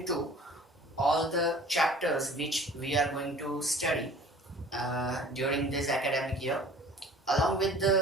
to all the chapters which we are going to study during this academic year. Along with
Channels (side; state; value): both; normal; correlation 0.48